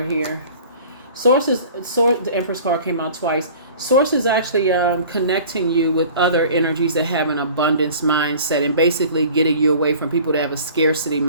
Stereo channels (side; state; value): both; inverted; correlation -0.45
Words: here. The Empress card came out twice. Source is actually connecting you with other energies that have an abundance mindset, and basically getting you away from people that have a scarcity